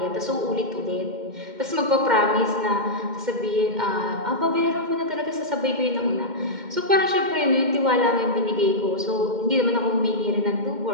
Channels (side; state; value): left; late; 2.1 ms